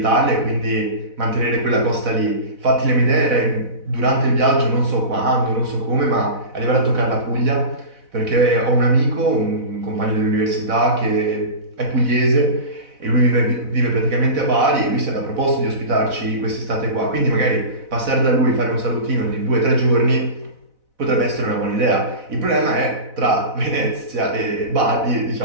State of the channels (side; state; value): left; late; 4.0 ms